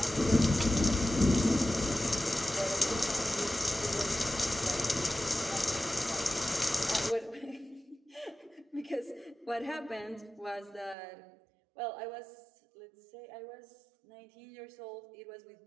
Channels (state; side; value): drops out; left; at 11.0 s